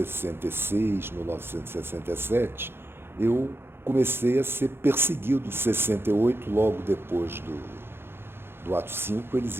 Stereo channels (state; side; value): late; left; 0.11 ms